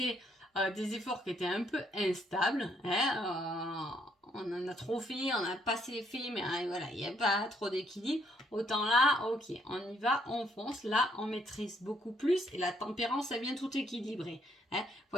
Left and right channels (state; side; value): normal; both; correlation 0.70